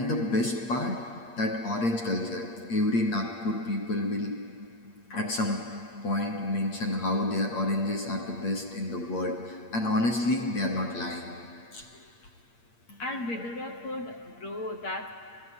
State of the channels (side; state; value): right; late; 8.6 ms